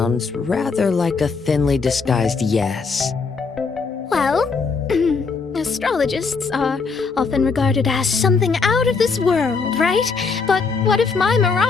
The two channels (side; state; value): right; quieter; 4.8 dB